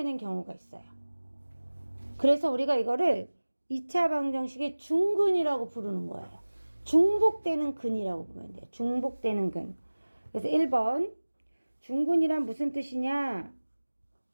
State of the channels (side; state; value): both; inverted; correlation -1.00